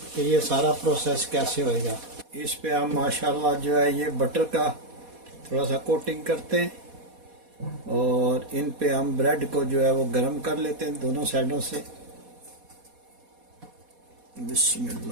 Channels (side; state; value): left; late; 4.2 ms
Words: कि ये सारा प्रोसेस कैसे होएगा। इस पे हम माशाल्लाह जो है ये बटर का थोड़ा सा कोटिंग करते हैं और इन पे हम ब्रेड को जो है वो गरम कर लेते हैं दोनों साइडों से।